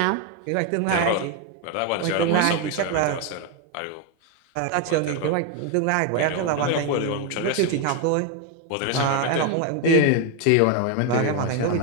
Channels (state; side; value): different; both; correlation 0.01